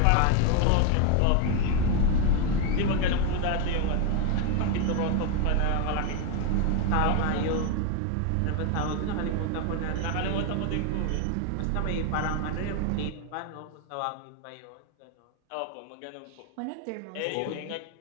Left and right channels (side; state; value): both; different; correlation 0.01